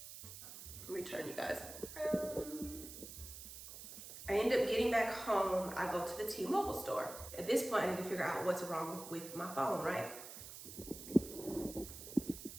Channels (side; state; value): right; noise; hiss, 12 dB below the sound